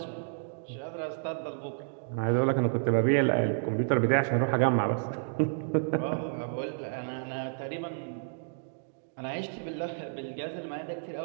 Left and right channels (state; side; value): silent; left; digital silence